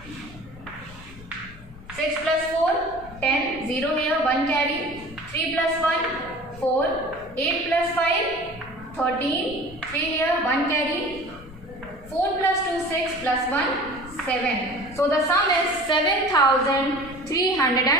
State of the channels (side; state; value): left; noise; rumble, 18 dB below the sound